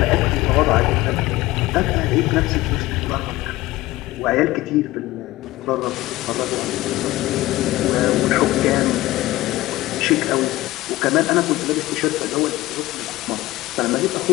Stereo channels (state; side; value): quieter; right; 17.8 dB